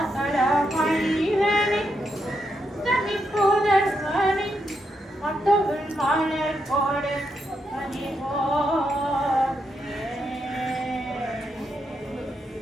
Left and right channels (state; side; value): normal; both; correlation 0.82